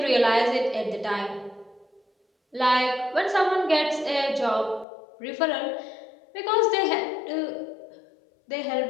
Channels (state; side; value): drops out; right; at 4.9 s